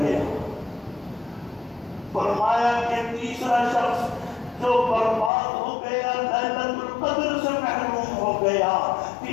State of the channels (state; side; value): drops out; right; at 5.3 s